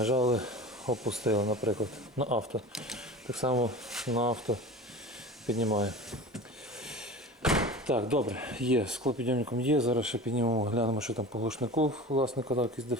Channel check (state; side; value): normal; both; correlation 0.35